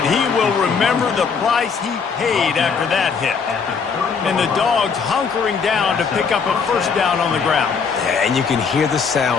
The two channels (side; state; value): right; quieter; 5.8 dB